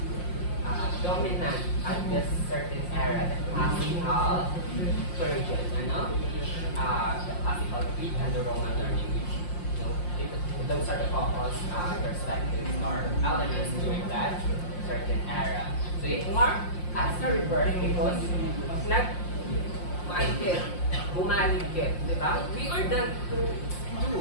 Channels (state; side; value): late; right; 5.7 ms